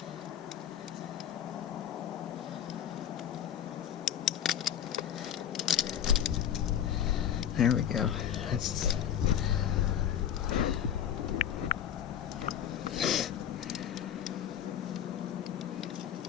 There we go. That's...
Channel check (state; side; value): quieter; right; 9.7 dB